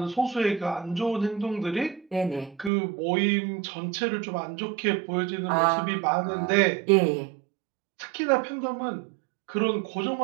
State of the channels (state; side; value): drops out; left; at 2.7 s